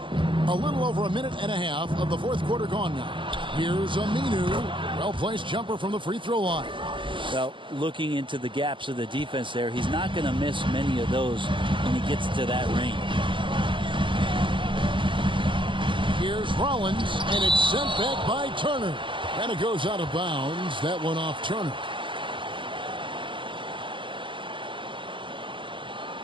A little over a minute and a half of the fourth quarter gone now. Here's Aminu. Well-placed jumper from the free throw line. Well, looking into the gaps of the defense there, he's not going to miss many of those when he gets to that range. Here's Rollins, and it's sent back by Turner. And it goes out of bounds. That one off Turner.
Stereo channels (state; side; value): late; left; 0.24 ms